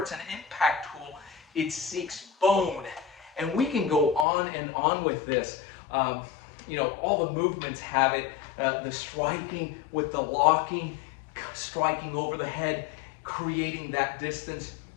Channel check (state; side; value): drops out; right; at 4.2 s